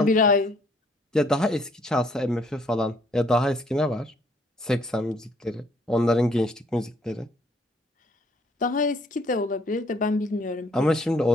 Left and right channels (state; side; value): normal; both; correlation 0.64